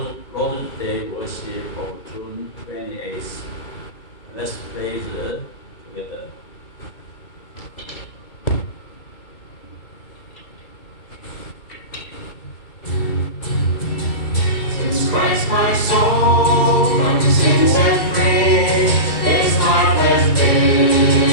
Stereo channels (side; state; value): right; late; 2.3 ms